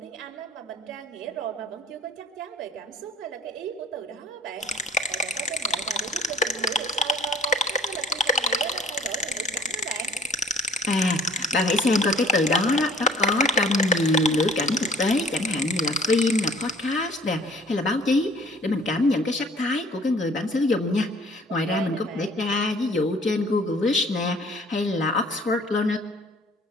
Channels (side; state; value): both; normal; correlation 0.53